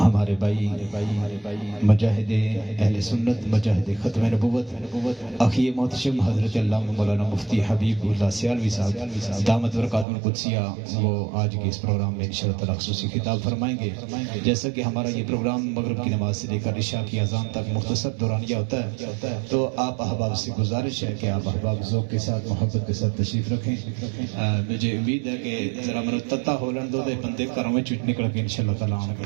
بھائی مجاہد اہل سنت، مجاہد ختم نبوت اخی محتشم حضرت علامہ مولانا مفتی حبیب اللہ سیالوی صاحب دامت برکاتہ القدسیہ، وہ آج کے اس پروگرام میں انشاءاللہ تعالی خصوصی خطاب فرمائیں گے۔ جیسا کہ ہمارا یہ پروگرام مغرب کی نماز سے لے کر عشاء کی اذان تک مختصر دورانیہ ہوتا ہے، تو آپ احباب سے گزارش ہے کہ آپ احباب ذوق کے ساتھ، محبت کے ساتھ تشریف رکھیں۔ مجھے امید ہے کہ ذرا منتتا ہولن دو بندے گھروں میں چٹ نکل کے انشاءاللہ تعالیٰ آؤں گے،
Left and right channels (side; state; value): left; drops out; at 10.1 s